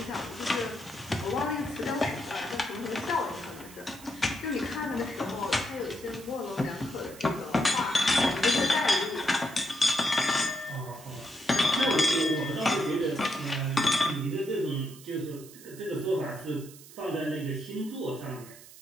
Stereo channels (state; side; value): noise; right; hiss, 19 dB below the sound